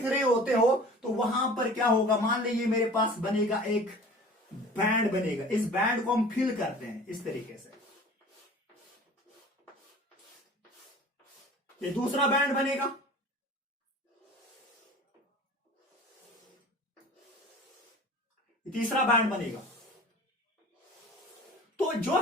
रहे होते हो, तो वहां पर क्या होगा, मान लीजिए मेरे पास बनेगा एक बैंड बनेगा, इस बैंड को हम फिल करते हैं इस तरीके से, ये दूसरा बैंड बनेगा, तीसरा बैंड बनेगा। तो जो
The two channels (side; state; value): both; normal; correlation 0.42